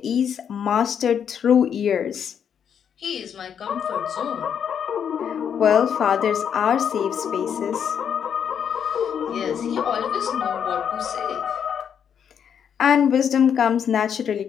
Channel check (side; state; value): right; quieter; 8.1 dB